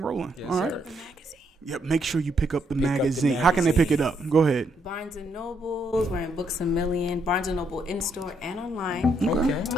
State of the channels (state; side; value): normal; both; correlation 0.74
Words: rolling. Yes, all right. Sir. Yep. Make sure you pick up the magazine. How can they pick it up? Go ahead. Barnes and Noble. We're in Books a Million. Barnes and Noble in store and online. Okay.